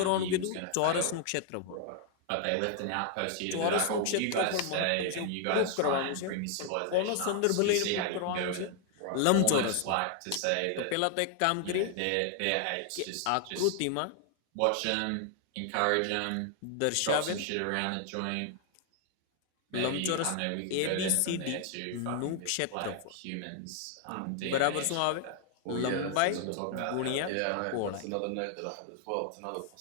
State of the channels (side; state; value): both; different; correlation 0.00